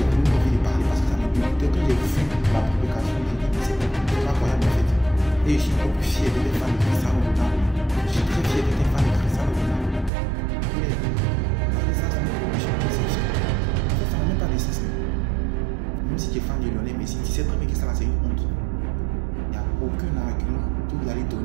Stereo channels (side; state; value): left; drops out; at 10.1 s